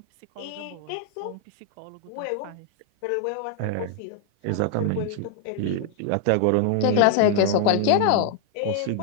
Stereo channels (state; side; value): different; both; correlation 0.00